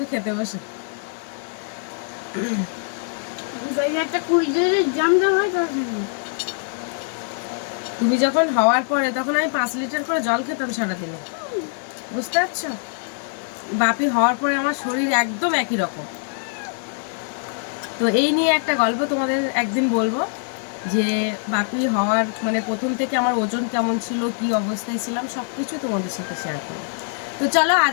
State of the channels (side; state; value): right; silent; digital silence